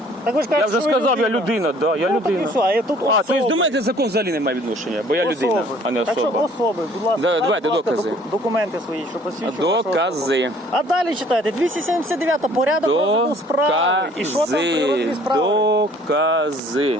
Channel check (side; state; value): both; normal; correlation 0.56